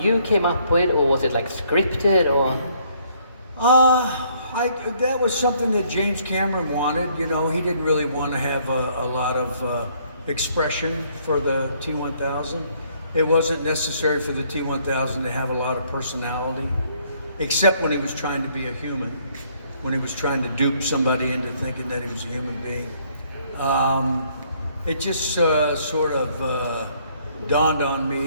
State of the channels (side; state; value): both; inverted; correlation -0.65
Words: came up with, or was it like scripted, or? That was something that James Cameron wanted. You know, he didn't really want to have a lot of expression for the T1000. It wasn't necessary for the T1000 to have a lot of personality, except when he was trying to be a human, when he was trying to dupe somebody into thinking that he was a human being. It just sort of dawned on